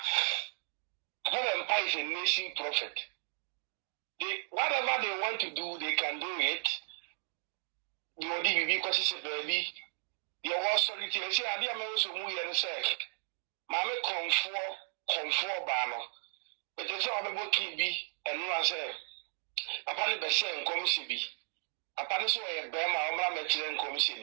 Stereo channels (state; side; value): silent; left; digital silence